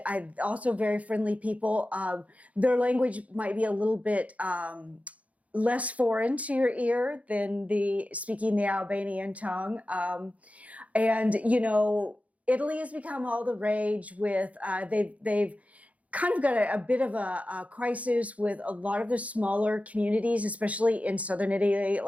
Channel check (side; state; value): left; late; 0.067 ms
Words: also very friendly people. Their language might be a little bit less foreign to your ear than speaking the Albanian tongue. And, Italy has become all the rage with, they've kind of got a bit of a crisis with a lot of the smaller communities, especially in southern Italy,